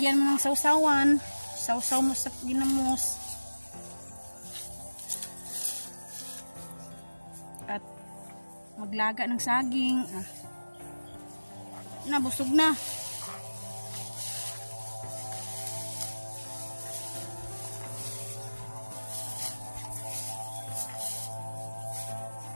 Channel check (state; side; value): inverted; both; correlation -1.00